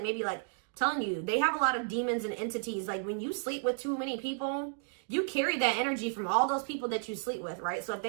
maybe like telling you they have a lot of demons and entities. Like when you sleep with too many people, you carry that energy from all those people that you sleep with, right? So if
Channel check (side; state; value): left; silent; 56 dB below the other